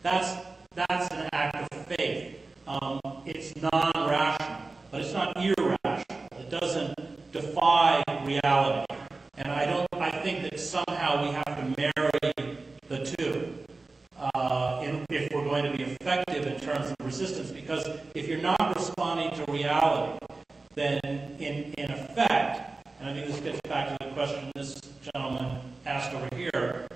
That's an act of faith. It's non-rational, but it's not irrational. It doesn't defy reality. And I think that somehow we have to marry the two if we're going to be effective in terms of resistance. Because if you're not responding to reality, then in effect, and I think this gets back to the question this gentleman asked over here,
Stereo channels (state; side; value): quieter; left; 3.6 dB